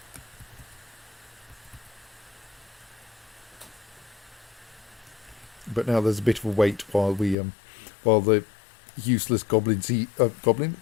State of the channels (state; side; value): drops out; right; at 7.4 s